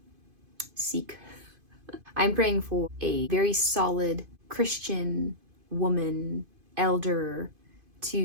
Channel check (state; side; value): late; left; 2.5 ms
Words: seek. I'm praying for a very solid Christian woman, elder,